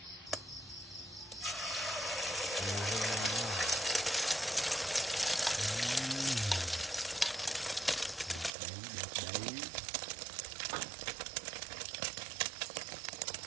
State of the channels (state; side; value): drops out; left; at 8.5 s